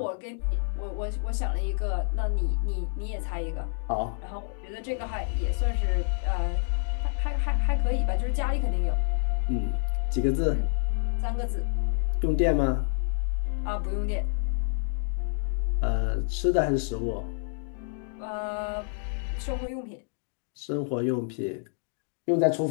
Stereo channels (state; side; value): silent; right; digital silence